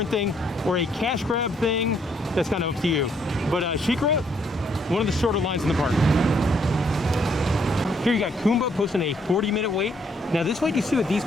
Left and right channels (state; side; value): normal; both; correlation 0.70